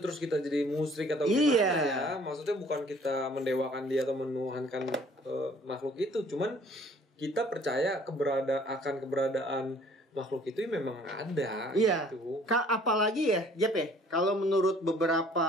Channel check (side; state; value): both; normal; correlation 0.56